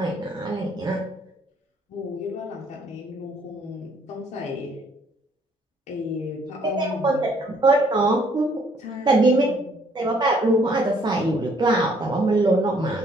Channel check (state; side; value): normal; both; correlation 0.64